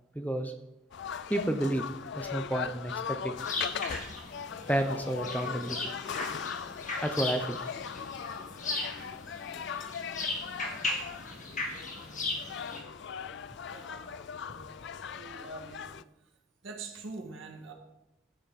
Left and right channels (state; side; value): normal; both; correlation 0.47